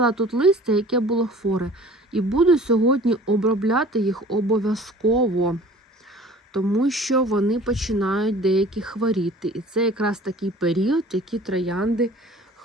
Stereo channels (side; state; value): both; normal; correlation 0.47